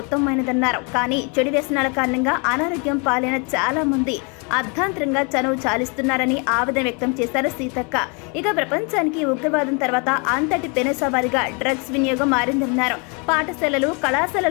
ఉత్తమమైనదన్నారు. కానీ చెడు వ్యసనాల కారణంగా అనారోగ్యం పాలైన చాలా మంది అర్ధాంతరంగా చనువు చాలిస్తున్నారని ఆవేదన వ్యక్తం చేశారు సీతక్క. ఇక ప్రపంచానికి ఉగ్రవాదం తర్వాత అంతటి పెనుసవారిగా డ్రగ్స్ వినియోగం మారిందన్నారు. పాఠశాలలు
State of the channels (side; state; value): right; quieter; 33.4 dB